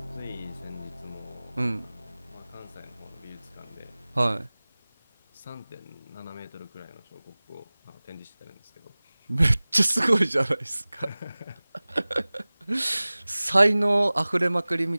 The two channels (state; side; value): inverted; both; correlation -1.00